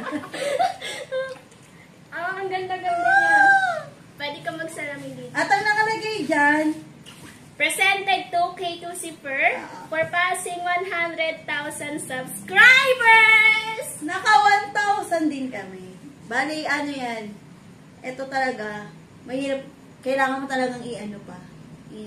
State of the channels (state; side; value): identical; both; correlation 1.00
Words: Ang ganda-ganda niya. Pwede ka magsalamin dito. At ang nakalagay dyan, Presented to K2 Zipper for passing 100,000 subscribers! naka 1,000 din kami. Bali, ano yan, ito talaga, mahirap, kailangan mo talagang i-apply.